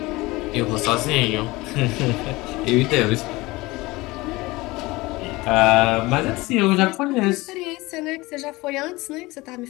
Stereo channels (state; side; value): quieter; right; 21.4 dB